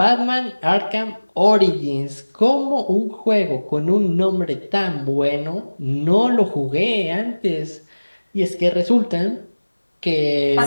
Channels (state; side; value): inverted; both; correlation -1.00